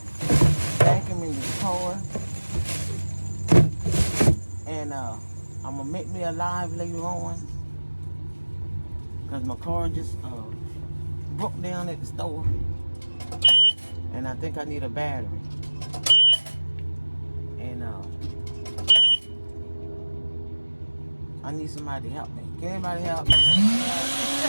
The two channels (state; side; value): inverted; both; correlation -1.00